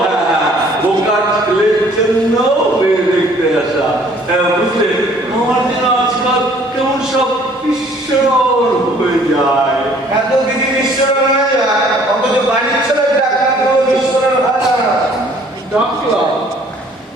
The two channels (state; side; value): normal; both; correlation 0.58